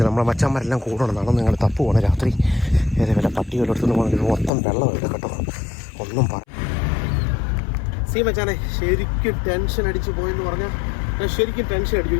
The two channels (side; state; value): right; drops out; at 4.5 s